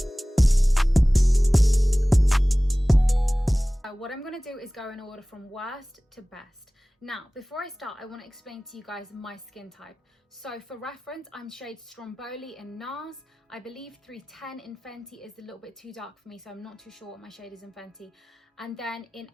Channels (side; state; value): both; normal; correlation 0.98